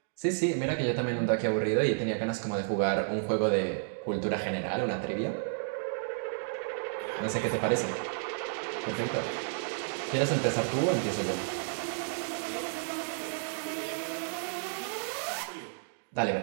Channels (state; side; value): silent; left; digital silence